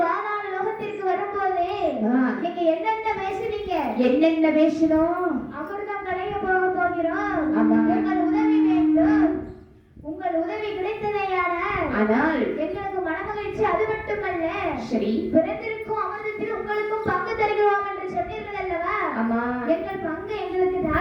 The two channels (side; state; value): both; identical; correlation 1.00